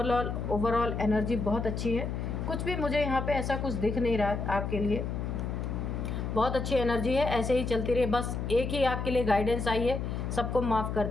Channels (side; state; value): left; noise; hum, 3 dB below the sound